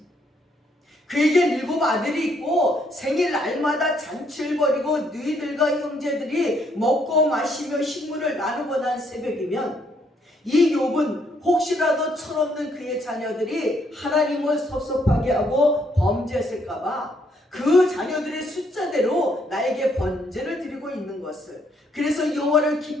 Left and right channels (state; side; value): normal; both; correlation 0.71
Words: 그에게 7 아들이 있고 생일 날마다 잔치를 벌이고 너희들과 형제들이 먹고 마시며 식물을 나누고 난 새벽이면 이 욥은 혹시라도 철없는 그의 자녀들이 하나님을 섭섭하게 하고 범죄했을까봐 그 자녀들의 숫자대로 나에게 번제를 드리고 있는 것을, 그래서 여호와를